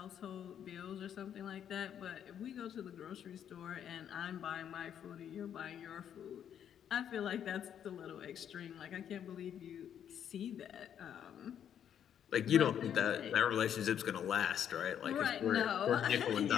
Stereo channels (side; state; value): right; quieter; 9.2 dB